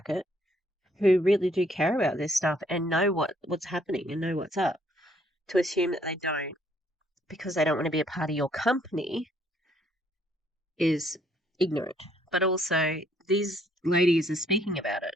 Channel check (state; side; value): normal; both; correlation 0.67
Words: who really do care about this stuff and know what's happening and know what's up. To assume that they don't because they don't want to be a part of your company is ignorant. But also, these ladies are speaking about it